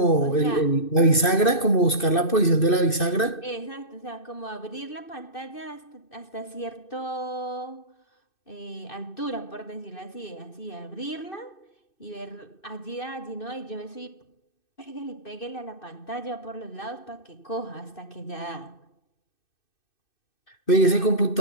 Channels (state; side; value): late; right; 2.6 ms